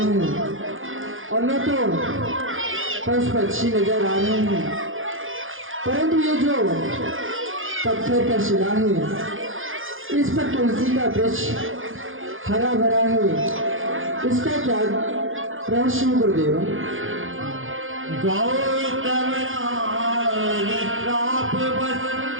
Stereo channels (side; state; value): left; late; 0.59 ms